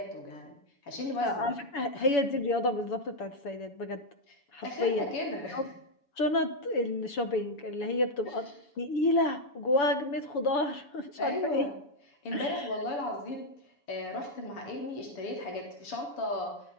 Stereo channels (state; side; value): late; right; 7.0 ms